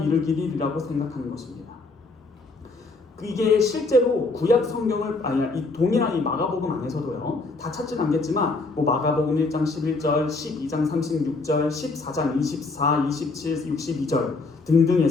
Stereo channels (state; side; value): quieter; right; 3.6 dB